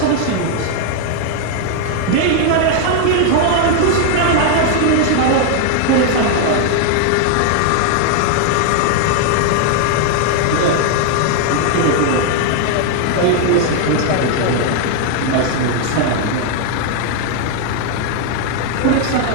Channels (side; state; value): both; different; correlation 0.00